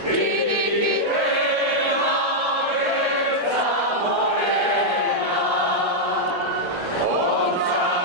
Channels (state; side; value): late; left; 1.3 ms